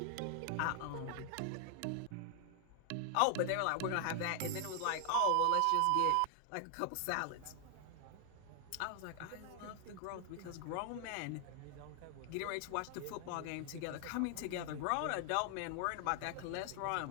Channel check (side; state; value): both; different; correlation 0.00